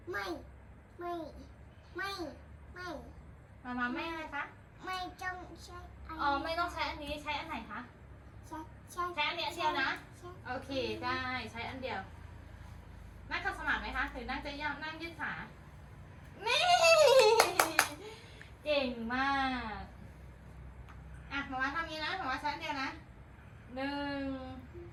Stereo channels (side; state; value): both; identical; correlation 1.00